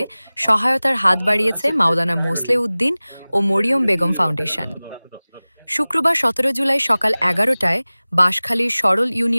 সহায়তার হাত বাড়িয়েছে মাওলানা মোসলে উদ্দিন ও মরিয়ম বেগম ফাউন্ডেশন। শুক্রবার ১৭ জুলাই সকাল ১১টায় বাঁশখালীর সরল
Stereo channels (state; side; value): inverted; both; correlation -0.99